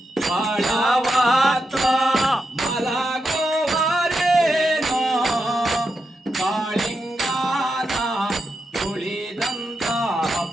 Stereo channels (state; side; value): normal; both; correlation 0.86